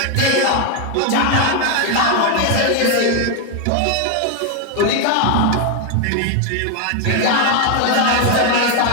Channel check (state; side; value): different; both; correlation 0.01